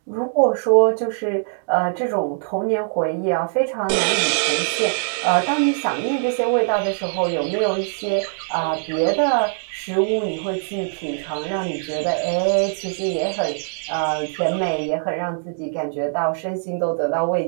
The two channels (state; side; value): silent; left; digital silence